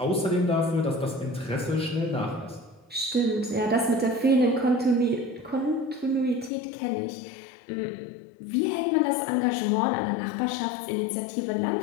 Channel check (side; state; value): right; drops out; at 6.5 s